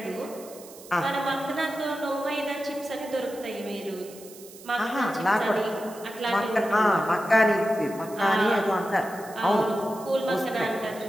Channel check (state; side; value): noise; right; hiss, 19 dB below the sound